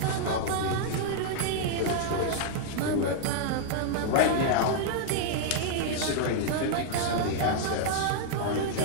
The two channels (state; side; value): different; both; correlation 0.00